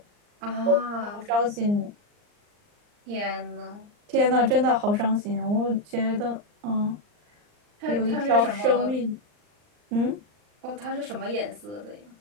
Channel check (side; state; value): left; late; 39 ms